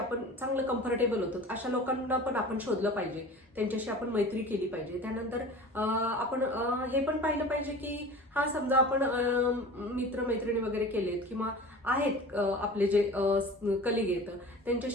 चांगलं कम्फर्टेबल होतो अशा लोकांना पण आपण शोधलं पाहिजे, त्यांच्याशी आपण मैत्री केली पाहिजे. त्यानंतर आपण हे पण पाहिलं पाहिजे की हा समजा आपण मित्र मैत्रिणी वगैरे केलेत किंवा आहेत आपले जे कलिग आहेत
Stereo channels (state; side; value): normal; both; correlation 0.38